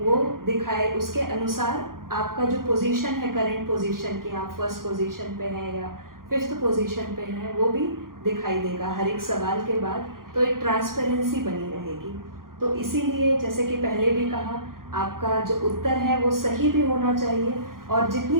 दिखाए। उसके अनुसार आपका जो पोजीशन है, करंट पोजीशन की, आप फर्स्ट पोजीशन पे हैं या 5th पोजीशन पे हैं, वो भी दिखाई देगा हर एक सवाल के बाद। तो एक ट्रांसपेरेंसी बनी रहेगी। तो इसीलिए जैसे कि पहले भी कहा, आपका जो उत्तर है वो सही भी होना चाहिए और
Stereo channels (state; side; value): late; left; 0.91 ms